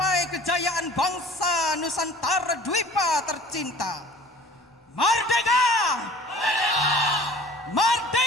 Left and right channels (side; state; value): both; normal; correlation 0.46